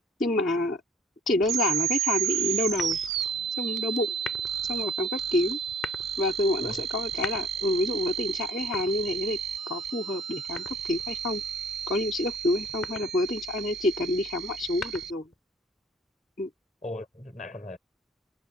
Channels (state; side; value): normal; both; correlation 0.56